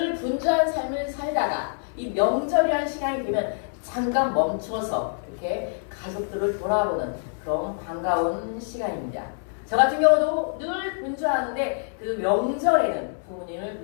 분주한 삶을 살다가 이 명절이라는 시간이 되면 잠깐 멈춰서 이렇게 가족들을 돌아보는 그런 반가운 시간입니다. 저 같은 경우도 늘 분주하는데 그 명절에는 부모님을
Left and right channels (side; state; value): right; silent; 61 dB below the other